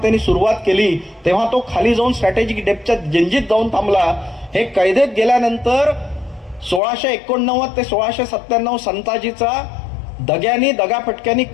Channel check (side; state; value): right; drops out; at 6.8 s